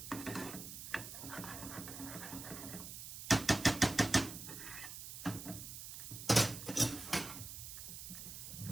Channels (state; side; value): noise; right; hiss, 9 dB below the sound